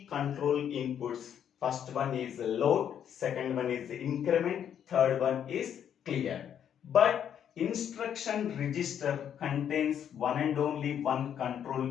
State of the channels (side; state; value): right; quieter; 9.1 dB